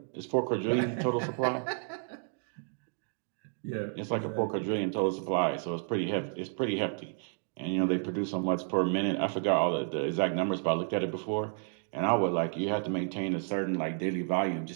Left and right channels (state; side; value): silent; left; 57 dB below the other